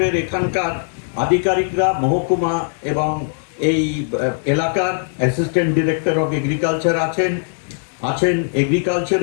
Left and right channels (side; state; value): right; silent; digital silence